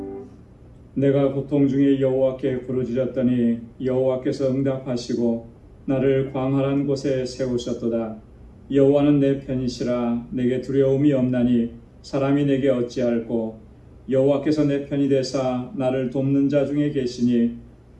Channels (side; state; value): both; identical; correlation 1.00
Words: 내가 고통 중에 여호와께 부르짖었더니 여호와께서 응답하시고 나를 광활한 곳에 세우셨도다. 여호와는 내 편이시라. 내게 두려움이 없나니 사람이 내게 어찌할꼬. 여호와께서 내 편이 되사 나를 돕는 자 중에 계시니